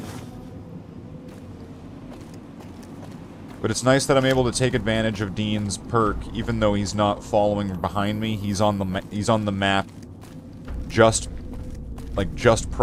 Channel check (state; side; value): identical; both; correlation 1.00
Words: But it's nice that I'm able to take advantage of Dean's perk, even though he's not following behind me. He's on the map just